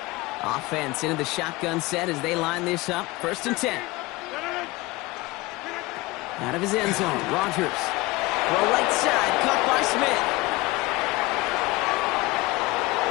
Offense into the shotgun set as they line this up. 1st and 10. Out of his end zone, Rodgers. Throw right side, caught by Smith.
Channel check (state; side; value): quieter; right; 21.5 dB